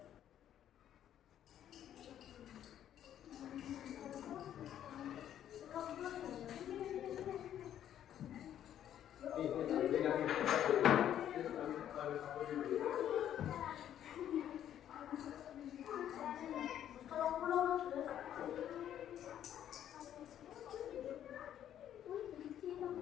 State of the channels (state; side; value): quieter; right; 10.6 dB